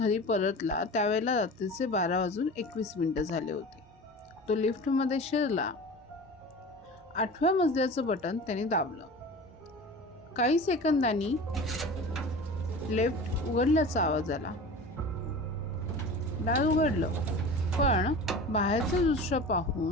परतला त्यावेळेला रात्रीचे 12:21 झाले होते. तो लिफ्टमध्ये शिरला. 8व्या मजल्याचं बटन त्याने दाबलं. काही सेकंदांनी लिफ्ट उघडल्याचा आवाज आला. दार उघडलं, पण बाहेरचं दृश्य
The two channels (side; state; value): both; normal; correlation 0.35